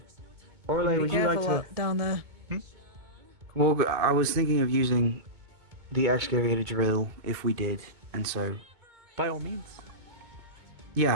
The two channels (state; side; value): late; left; 2.2 ms